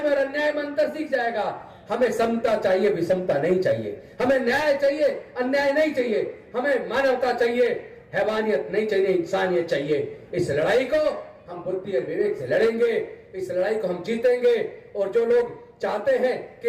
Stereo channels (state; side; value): identical; both; correlation 1.00